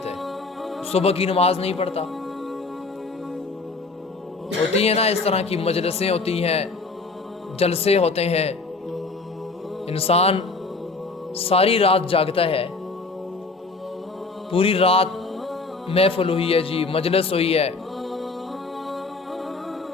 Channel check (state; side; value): quieter; right; 3.8 dB